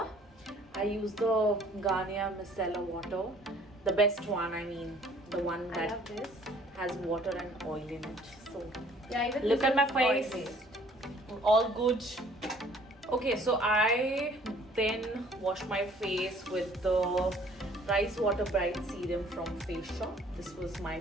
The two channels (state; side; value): normal; both; correlation 0.56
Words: I use the Garnier Micellar water. The best one, I mean. The one I that love this. has water and oil in it. So, Yeah, even look this at my is face. oil-based. All good. Okay, so I then wash my face with the Rice Water Bright Serum from Face Shop. This was my